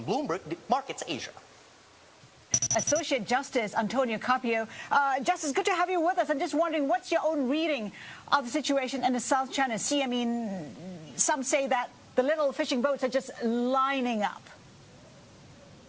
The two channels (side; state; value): both; identical; correlation 1.00